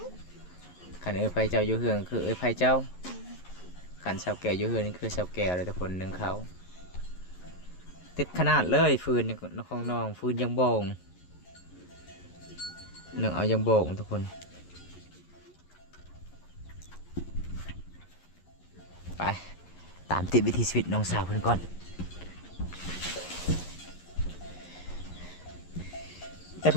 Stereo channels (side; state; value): right; late; 11 ms